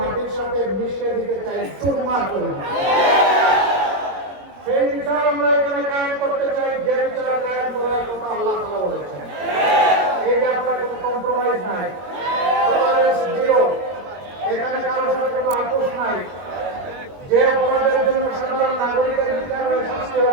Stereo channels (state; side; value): late; left; 21 ms